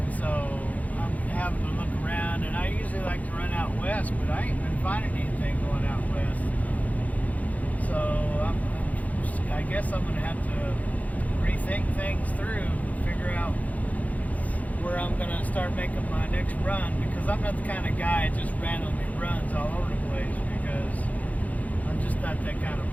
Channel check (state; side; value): late; right; 0.074 ms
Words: so I'm having to look around, and I usually like to run out west, but I ain't been finding anything going out west. So I guess I'm going to have to rethink things through, figure out where I'm going to start making my next run, because I'm not the kind of guy that just randomly runs all over the place, because I'm just not that kind of